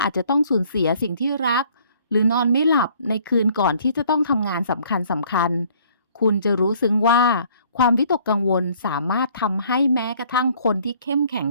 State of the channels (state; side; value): inverted; both; correlation -0.58